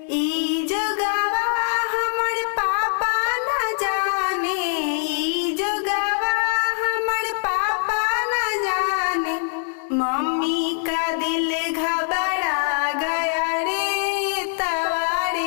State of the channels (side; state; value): right; silent; digital silence